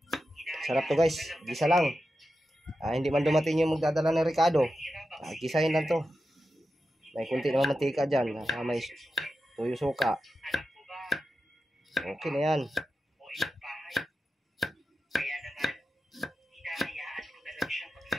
Sarap to guys, gisa lang. Hindi man dumating yung magdadala ng Ricardo. Gisahin lang to. May kunti naman mantika dyan. May tuyo suka. Anak mo ba? Okay na yan. O ibang bahay? Kaya naman, hinahayaan ko na lang siya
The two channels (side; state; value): both; normal; correlation 0.91